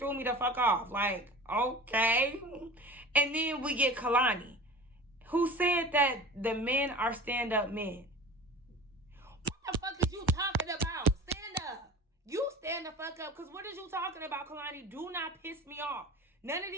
me the fuck off. Like, okay. And then we get Kalani, who said that the men are stand-up men. What the fuck is you talking about? Stand up. You stand the fuck up, because what is you talking about, Kalani? Do not piss me off. None of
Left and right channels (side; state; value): both; normal; correlation 0.37